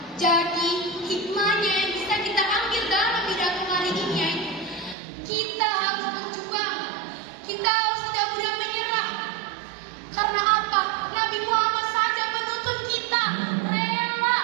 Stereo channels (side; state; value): left; drops out; at 5.0 s